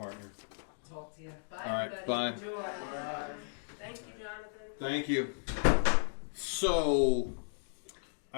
Talk to you. Bye. All right, everybody. bye. Enjoy. Bye. Thank you, Jonathan. Thank you. So,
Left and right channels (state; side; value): silent; right; digital silence